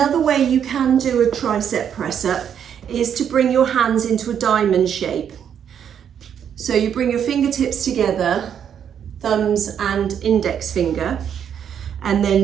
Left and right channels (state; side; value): quieter; left; 8.5 dB